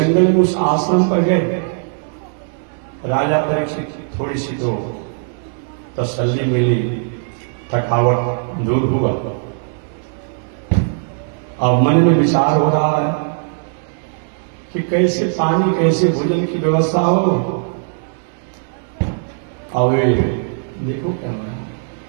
में, उस आश्रम पर गए। राजा परीक्षित थोड़ी सी तो तसल्ली मिली, थकावट दूर हुआ। अब मन में विचार हो रहा है कि कैसे पानी, कैसे भोजन की व्यवस्था हो। अब देखो क्या हो रहा है,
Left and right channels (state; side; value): silent; left; 67 dB below the other